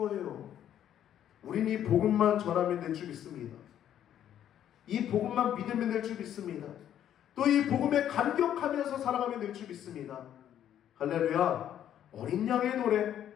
우리는 이 복음만 전하면 될 줄 믿습니다. 이 복음만 믿으면 될 줄 믿습니다. 또 이 복음에 감격하면서 살아가면 될 줄 믿습니다. 할렐루야. 어린 양의 노래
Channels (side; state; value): right; quieter; 10.5 dB